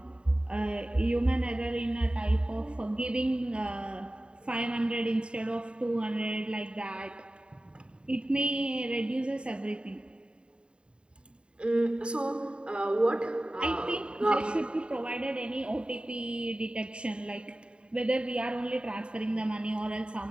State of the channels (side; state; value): left; late; 0.052 ms